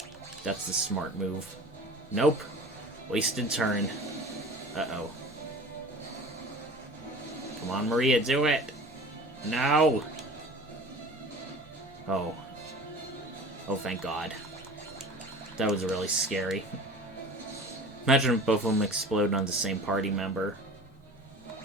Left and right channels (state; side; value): normal; both; correlation 0.40